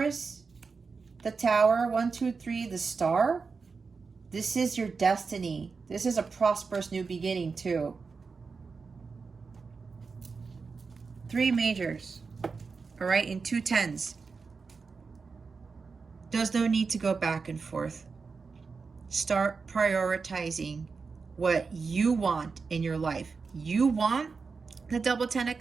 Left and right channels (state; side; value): quieter; left; 4.8 dB